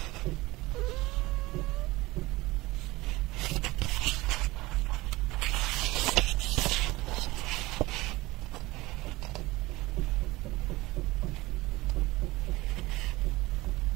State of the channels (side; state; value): left; quieter; 20.4 dB